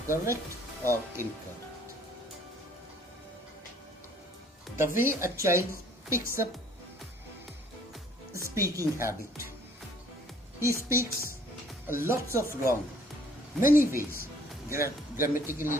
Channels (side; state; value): both; normal; correlation 0.58